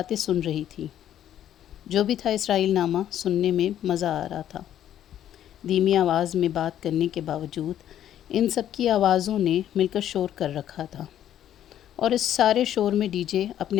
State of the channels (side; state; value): right; quieter; 11.0 dB